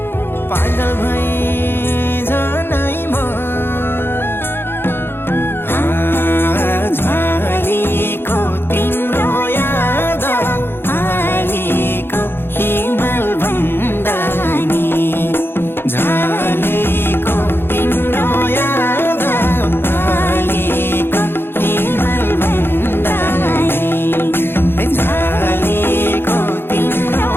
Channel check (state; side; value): late; right; 0.11 ms